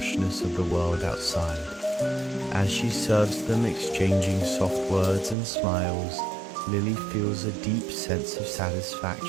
of the world outside. As she serves them, exchanging soft words and smiles, Lily feels a deep sense of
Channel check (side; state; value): left; drops out; at 5.4 s